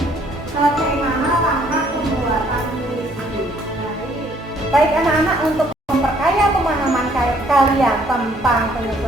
Bagaimana langkah pembuatan puisi? Baik anak-anak, untuk memperkaya pemahaman kalian tentang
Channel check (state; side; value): normal; both; correlation 0.63